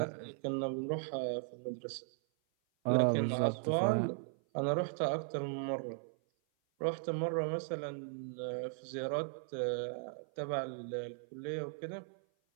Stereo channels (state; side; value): silent; left; 53 dB below the other